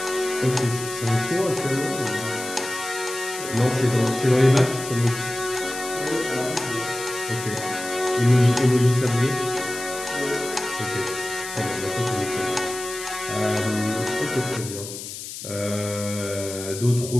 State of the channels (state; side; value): noise; left; hiss, 9 dB below the sound